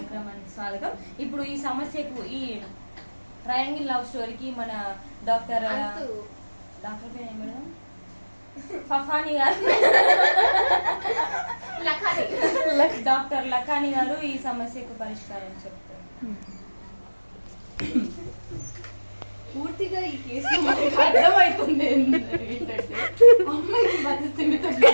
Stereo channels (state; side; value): inverted; both; correlation -1.00